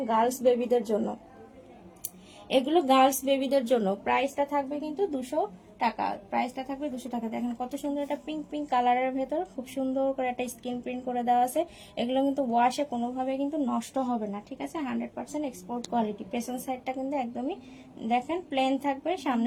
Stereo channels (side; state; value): both; identical; correlation 1.00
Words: গার্লস বেবিদের জন্য, এগুলো গার্লস বেবিদের জন্য। প্রাইসটা থাকবে কিন্তু 200 টাকা, প্রাইসটা থাকবে 200 টাকা। দেখেন কত সুন্দর একটা পিঙ্ক পিঙ্ক কালারের ভেতর খুব সুন্দর করে একটা স্ক্রিন প্রিন্ট করে দেওয়া আছে। এগুলো কিন্তু ওয়াশে কোনোভাবে কিন্তু নষ্ট হবে না, ঠিক আছে, 100% এক্সপোর্ট কোয়ালিটি। পেছন সাইডটা কিন্তু একদমই দেখেন প্লেন থাকবে,